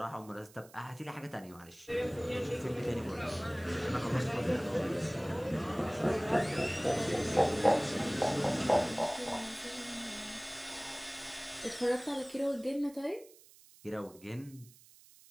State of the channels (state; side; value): noise; right; hiss, 23 dB below the sound